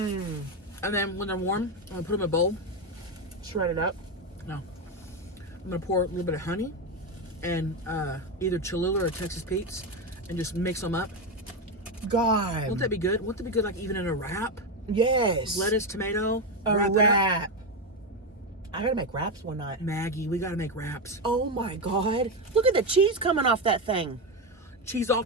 And then when they're warm, I'm going to put them in a bowl. Shred it up. No. I'm going to pour a little bit of honey and either Cholula or Texas Pete's and just mix them up. God. Won't that be good? Won't that be good like even in a wrap? Yes. Lettuce, tomato, A wrap it up. wrap. I gotta make wraps one night. Maggie, we got to make wraps. Oh my God. Look at the cheese coming off that thing. Cheese all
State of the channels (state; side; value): normal; both; correlation 0.11